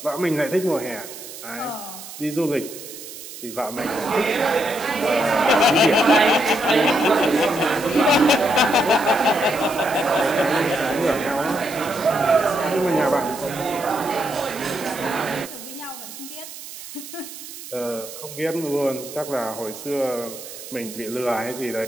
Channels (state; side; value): noise; right; hiss, 13 dB below the sound